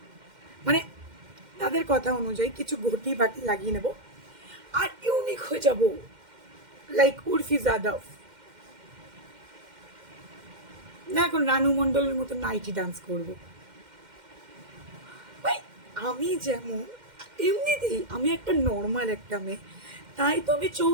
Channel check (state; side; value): late; left; 2.1 ms